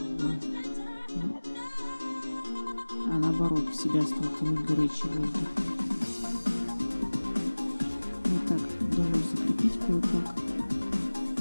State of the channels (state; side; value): inverted; both; correlation -1.00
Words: а наоборот в себя стал тянуть горячий воздух. Вот так удалось закрепить кое-как.